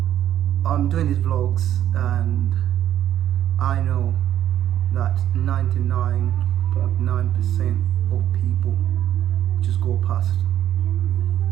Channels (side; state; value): left; quieter; 11.4 dB